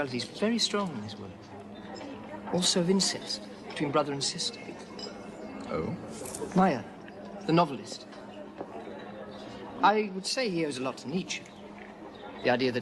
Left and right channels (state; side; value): identical; both; correlation 1.00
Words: is very strong in his work. Also of incest between brother and sister. Oh? Meyer, the novelist. I would say he owes a lot to Nietzsche. The idea